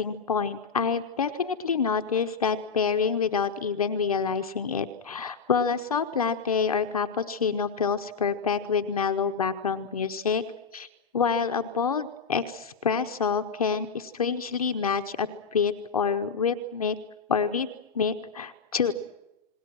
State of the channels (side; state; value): right; quieter; 5.5 dB